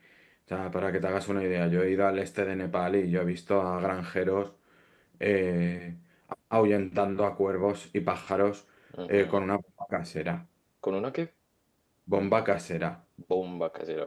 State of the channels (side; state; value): both; identical; correlation 1.00